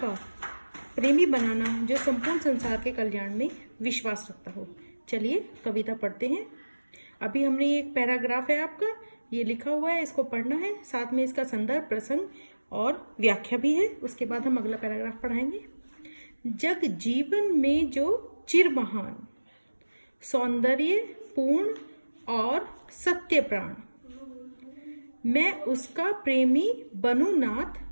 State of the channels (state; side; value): inverted; both; correlation -1.00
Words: प्रेमी बनाना जो संपूर्ण संसार के कल्याण में विश्वास रखता हो। चलिए कविता पढ़ते हैं। अभी हमने एक पैराग्राफ है आपका, ये लिखा हुआ है, इसको पढ़ना है, साथ में इसका संदर्भ, प्रसंग और व्याख्या भी है। उसके बाद हम अगला पैराग्राफ पढ़ाएंगे। जग जीवन में जो चिर महान, सौंदर्य पूर्ण और सत्य प्राण, मैं उसका प्रेमी बनूं नाथ,